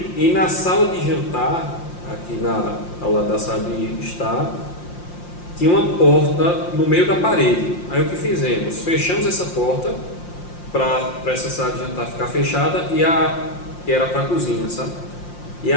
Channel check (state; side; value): late; right; 5.7 ms